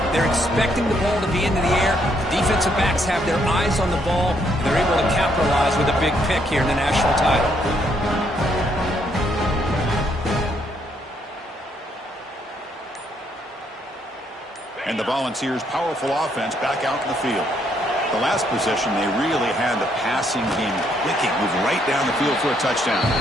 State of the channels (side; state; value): both; normal; correlation 0.72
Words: They're expecting the ball to be into the air. The defensive backs have their eyes on the ball, and they're able to capitalize with a big pick here in the national title. And the Volunteers' powerful offense back out in the field. The last possession, they really had the passing game clicking, move right down the field for a touchdown.